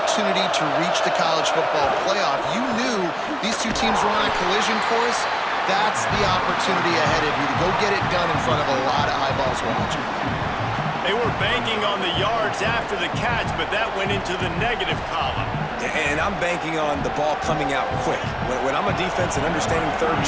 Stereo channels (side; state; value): both; identical; correlation 1.00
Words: to reach the college football playoff. You knew these two teams were on a collision course. That's the opportunity ahead of you to go get it done in front of a lot of eyeballs watching. They were banking on the yards after the catch, but that went into the negative column. And I'm banking on the ball coming out quick. When I'm a defense and understanding third and